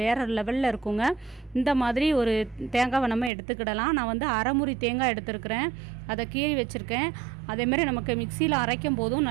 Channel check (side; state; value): left; drops out; at 3.3 s